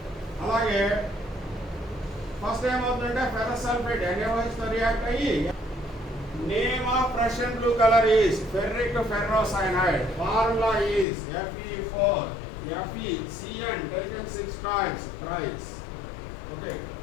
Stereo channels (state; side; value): drops out; right; at 11.1 s